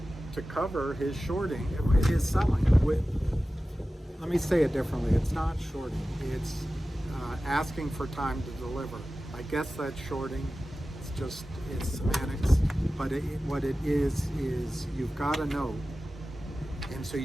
to cover his shorting, his selling. Let me say it differently. It's not shorting. It's asking for time to deliver. I guess that's shorting. It's semantics. But what it is you've got a note, and so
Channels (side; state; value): both; normal; correlation 0.95